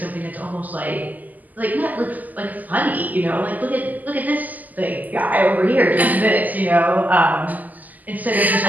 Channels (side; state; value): left; late; 0.081 ms